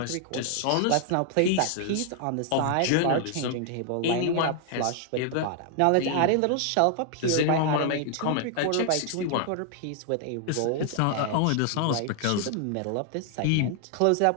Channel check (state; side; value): different; both; correlation 0.00